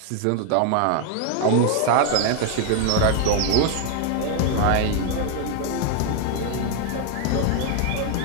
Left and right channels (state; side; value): different; both; correlation 0.00